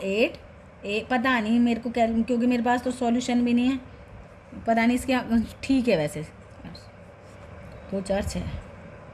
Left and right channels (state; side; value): identical; both; correlation 1.00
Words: पता नहीं मेरे को, क्योंकि मेरे पास तो सॉल्यूशन भी नहीं है, पता नहीं इसके। ठीक है, वैसे 2 4 6